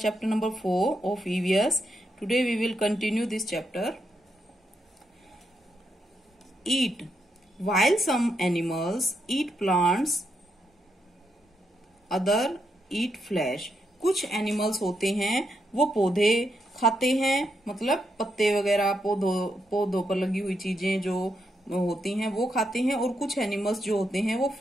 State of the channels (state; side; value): normal; both; correlation 0.81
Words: number 4 of EVS. Today we will continue this chapter. Eat. While some animals eat plants, other eat flesh. कुछ animals होते हैं वो पौधे खाते हैं, मतलब पत्ते वगैरह पौधों पर लगी हुई चीजें जो होती हैं वो खाते हैं, और कुछ एनिमल्स जो होते हैं वो